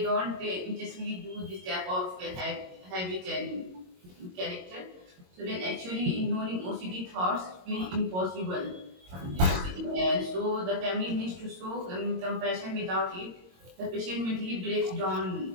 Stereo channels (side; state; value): left; late; 22 ms